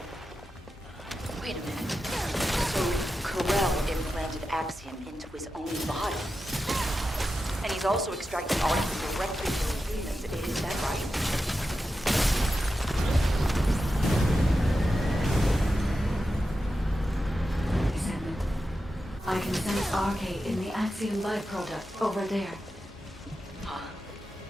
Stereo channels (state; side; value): normal; both; correlation 0.91